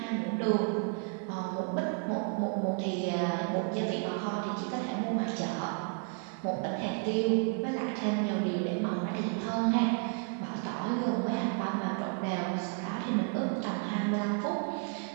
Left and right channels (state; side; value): quieter; left; 39.2 dB